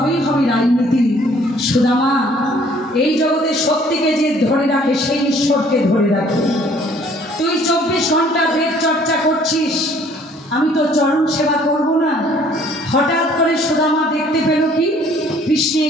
হবে রাজনীতি। সুদামা, এই জগতে সত্যিকে যে ধরে রাখে সেই ঈশ্বরকে ধরে রাখে। তুই 24 ঘন্টা বেদ চর্চা করছিস, আমি তো চরণ সেবা করব না? হঠাৎ করে সুদামা দেখতে পেল কি,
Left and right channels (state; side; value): normal; both; correlation 0.58